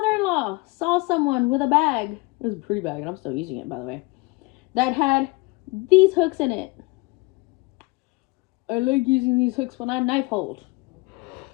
saw someone with a bag. It was a pretty bag, and I'm still using it, by the way. That had these hooks in it. I like using these hooks when I knife hold.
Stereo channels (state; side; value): quieter; right; 25.0 dB